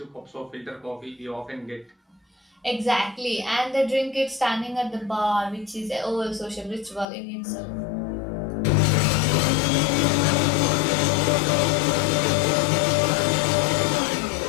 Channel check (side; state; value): right; drops out; at 7.1 s